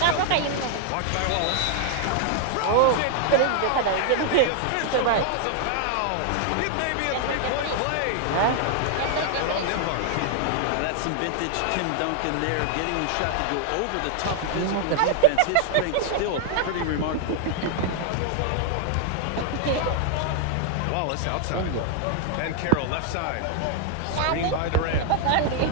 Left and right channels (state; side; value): different; both; correlation 0.00